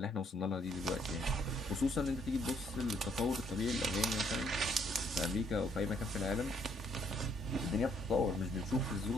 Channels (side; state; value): both; normal; correlation 0.68